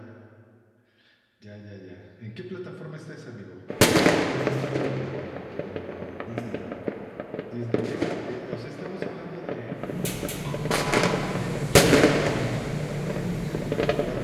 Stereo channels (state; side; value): identical; both; correlation 1.00